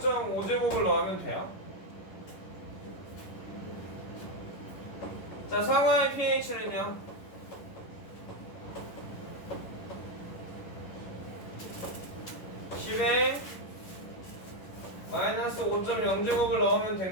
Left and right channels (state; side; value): late; right; 11 ms